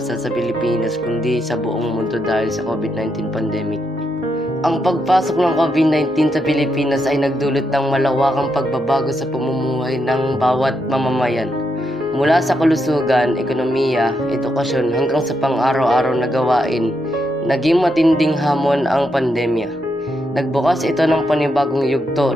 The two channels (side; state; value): both; normal; correlation 0.81